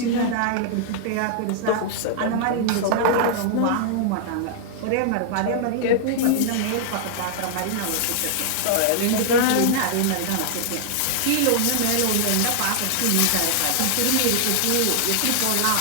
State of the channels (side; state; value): both; different; correlation -0.01